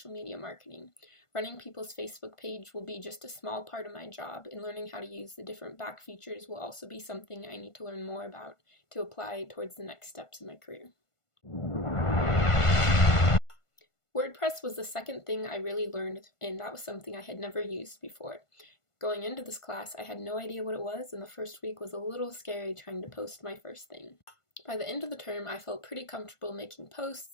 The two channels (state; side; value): late; right; 1.5 ms